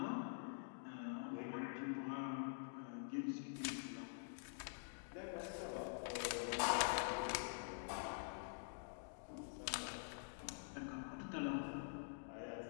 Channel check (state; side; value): silent; right; digital silence